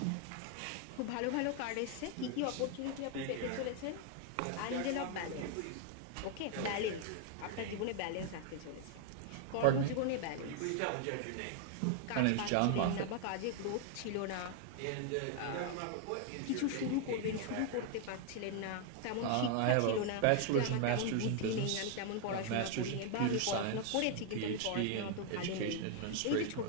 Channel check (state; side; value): different; both; correlation 0.00